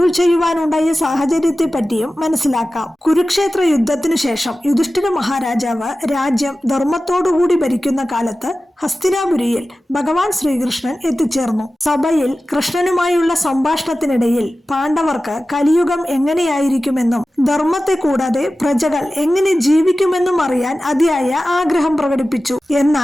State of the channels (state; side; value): normal; both; correlation 0.95